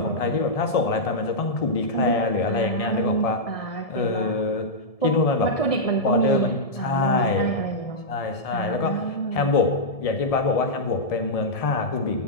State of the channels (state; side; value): late; right; 1.7 ms